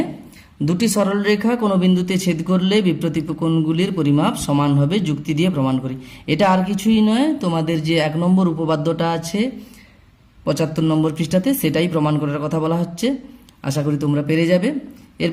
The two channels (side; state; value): both; identical; correlation 1.00